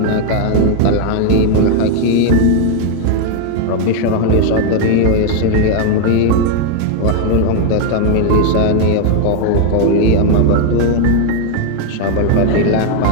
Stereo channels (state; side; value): different; both; correlation 0.00